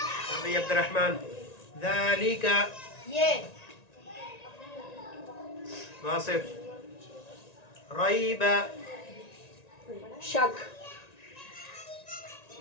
ابھی عبد الرحمن ذالک یہ واصف ریب شک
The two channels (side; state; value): right; late; 1.9 ms